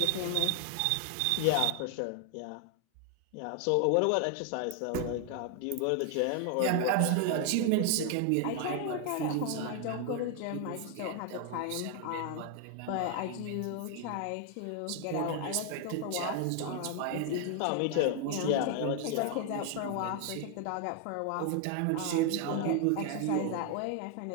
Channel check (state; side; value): different; both; correlation 0.00